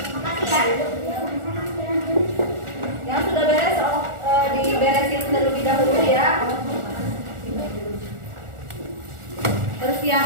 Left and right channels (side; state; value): left; late; 1.4 ms